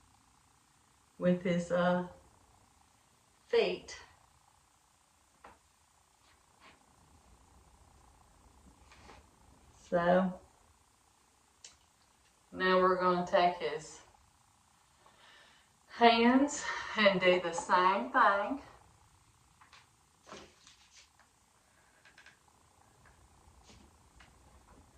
with his feet. So now we're going to take his hands and do the same thing.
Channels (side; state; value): both; identical; correlation 1.00